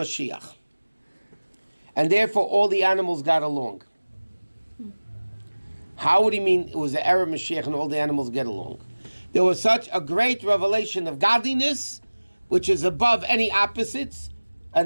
And therefore all the animals got along. How would he mean it was the era of Mashiach and all the animals get along? There was such a great revelation of godliness, which is above any opposites,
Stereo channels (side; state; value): both; inverted; correlation -1.00